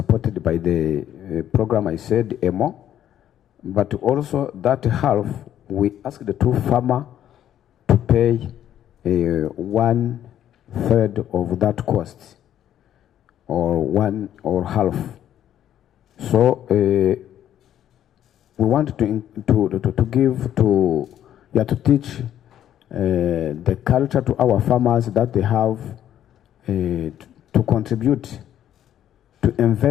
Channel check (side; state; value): right; quieter; 11.0 dB